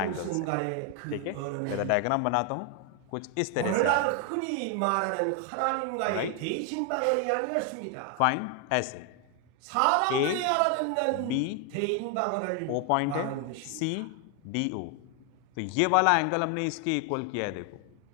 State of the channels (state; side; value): different; both; correlation 0.01